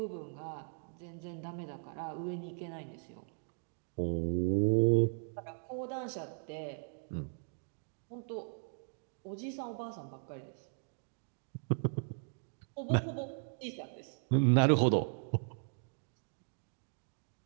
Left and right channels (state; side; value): silent; left; 53 dB below the other